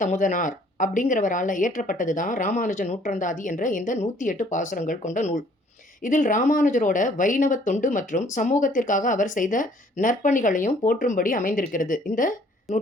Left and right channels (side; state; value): both; normal; correlation 0.59